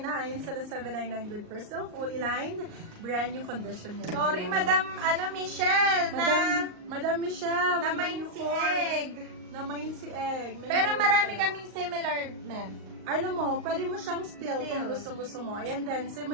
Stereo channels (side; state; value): left; late; 38 ms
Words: sala 799, good for sale, fully lined, brand new condition yan. Sorry, Madam Michelle, Madam Michelle, na Madam main si Nicole. Egg. Na-main si Egg. May Pero naman marami sa'yo. kaming similar, ma'am. Ano mo, pwede mo siyang steal kung gusto mo. Ayan din,